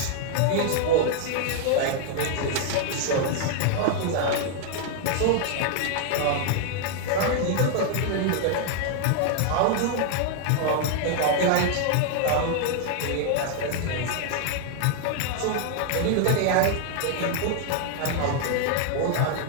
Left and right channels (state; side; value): different; both; correlation 0.00